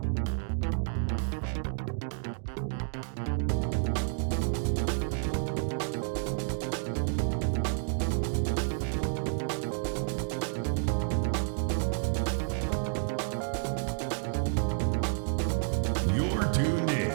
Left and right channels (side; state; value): left; silent; 58 dB below the other